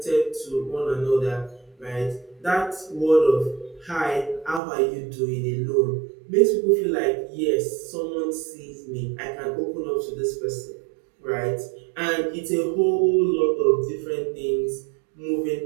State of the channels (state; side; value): drops out; left; at 4.6 s